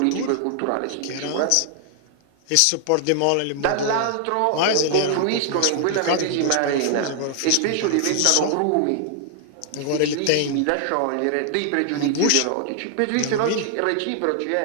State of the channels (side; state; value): both; different; correlation 0.00